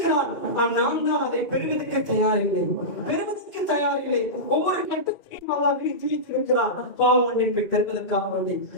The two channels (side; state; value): right; late; 2.4 ms